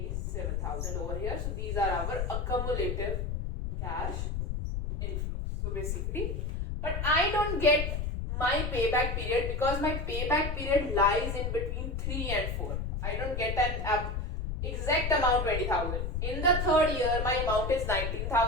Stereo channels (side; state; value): left; noise; rumble, 2 dB below the sound